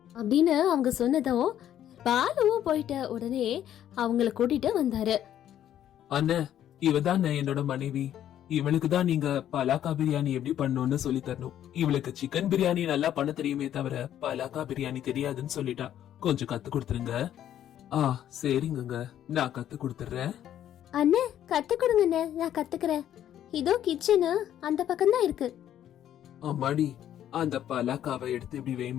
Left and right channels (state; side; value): quieter; right; 11.0 dB